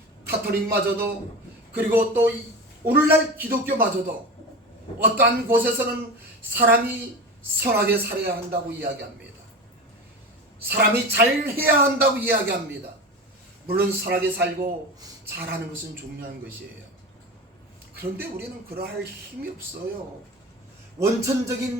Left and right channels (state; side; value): normal; both; correlation 0.28